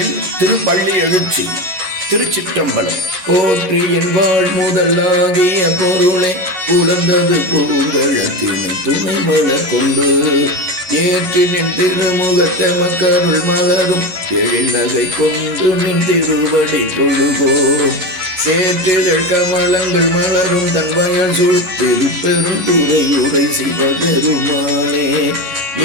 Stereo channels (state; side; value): late; left; 11 ms